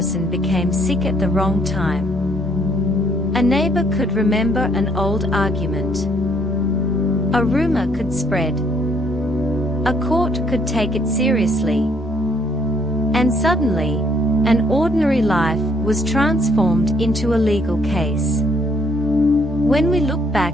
became sick at the wrong time. A neighbor could remember an old argument. A rumor could spread. A court could take it seriously. And suddenly, an ordinary life was transformed into a legal case. When we look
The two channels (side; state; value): both; normal; correlation 0.67